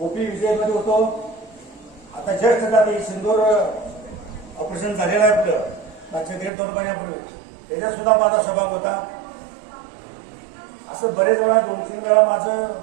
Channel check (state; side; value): drops out; left; at 6.5 s